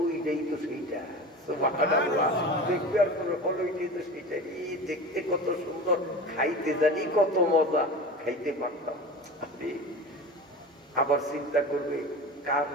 ওইটাই তো সেইটা, সুবহানাল্লাহ। দেখবে আর কোনো হলো ওইটাই তো সেইটা, এই দেখতে কত সুন্দর, খাইতে জানি কত মজা, খাইতে পারতাম। আবার চিন্তা করবে কার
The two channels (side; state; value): both; normal; correlation 0.32